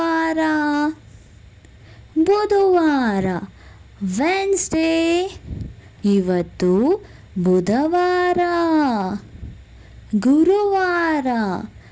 ಬುಧವಾರ ವೆನ್ಸ್ಡೇ. ಇವತ್ತು ಬುಧವಾರ. ಗುರುವಾರ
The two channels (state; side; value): identical; both; correlation 1.00